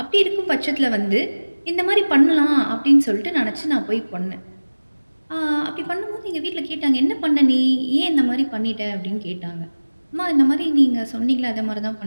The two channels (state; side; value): inverted; both; correlation -1.00